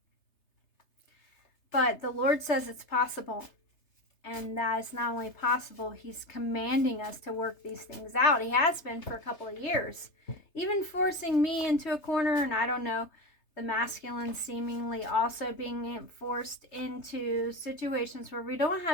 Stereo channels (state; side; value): late; right; 3.3 ms